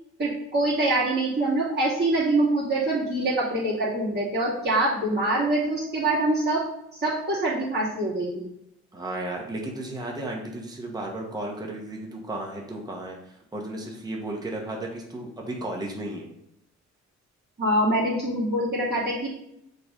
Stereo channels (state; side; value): normal; both; correlation 0.30